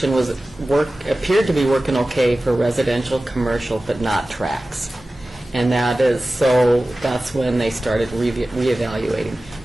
appeared to be working okay for residential, commercial, but not tracks. And that's when they started reevaluating.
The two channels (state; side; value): normal; both; correlation 0.96